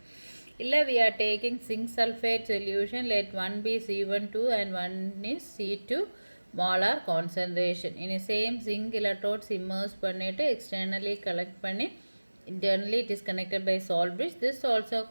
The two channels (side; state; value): both; inverted; correlation -1.00